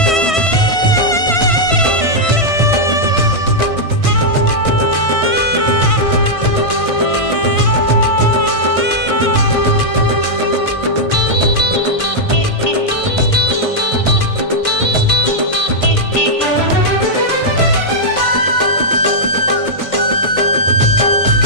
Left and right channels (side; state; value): right; late; 1.6 ms